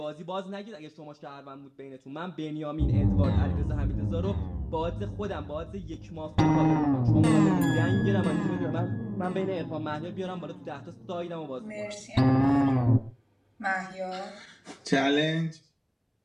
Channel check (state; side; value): identical; both; correlation 1.00